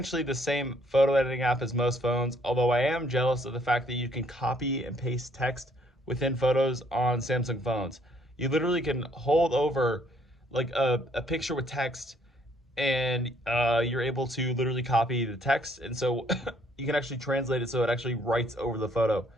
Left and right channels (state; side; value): normal; both; correlation 0.66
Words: the same photo editing app as most phones, although I am jealous of the fact that you can copy and paste text within photos on Samsung phones. You literally can hold over like a picture with text, and you're able to literally copy the text, and so you can actually translate it so it actually writes over the photo.